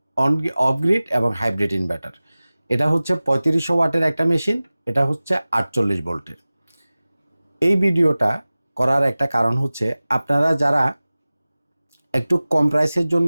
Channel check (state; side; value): inverted; both; correlation -0.98